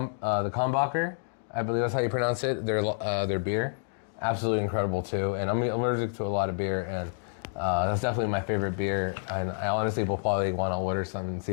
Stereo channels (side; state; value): right; silent; digital silence